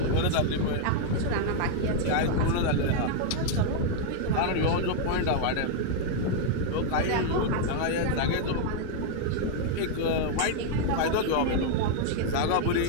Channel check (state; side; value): different; both; correlation 0.00